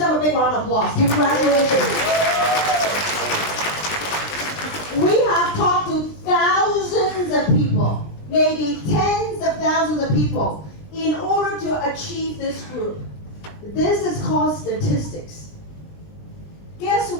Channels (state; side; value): late; right; 20 ms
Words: a big round of applause. Congratulations. We have talked to thousands of people, maybe tens of thousands of people, in order to achieve this group. This is called statistics. Guess